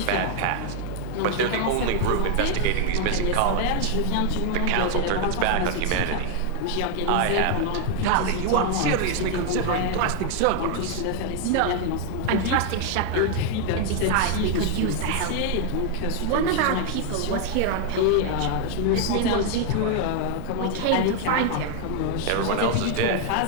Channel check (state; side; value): different; both; correlation 0.00